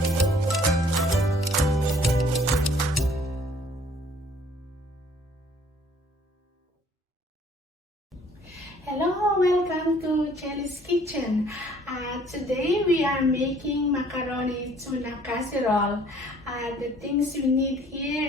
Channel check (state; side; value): normal; both; correlation 0.58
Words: Hello, welcome to Chelly's Kitchen. Today we are making macaroni tuna casserole. The things we need